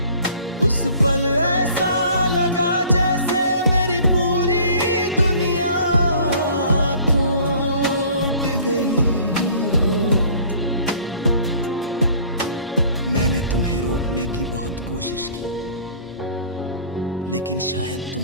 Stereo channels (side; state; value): both; inverted; correlation -0.51